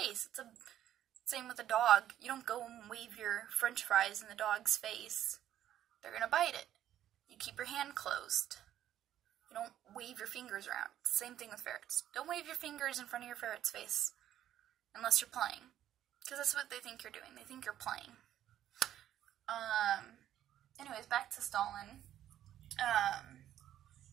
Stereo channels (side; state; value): left; quieter; 11.7 dB